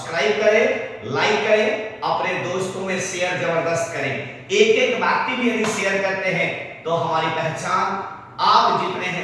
करें, लाइक करें, अपने दोस्तों में शेयर जबरदस्त करें। एक एक व्यक्ति भी यदि शेयर करते हैं तो हमारी पहचान आप जितने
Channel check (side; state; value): both; identical; correlation 1.00